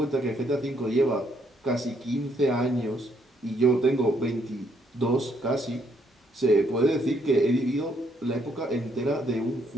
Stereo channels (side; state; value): both; normal; correlation 0.71